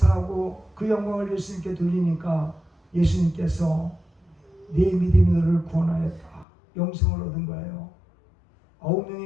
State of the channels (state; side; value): drops out; right; at 6.5 s